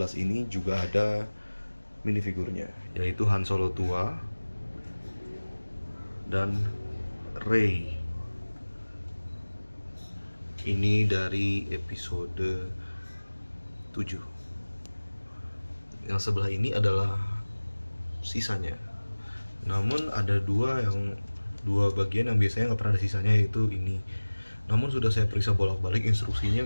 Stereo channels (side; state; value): both; inverted; correlation -1.00